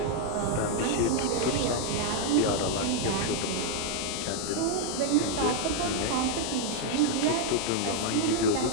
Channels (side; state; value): both; different; correlation 0.00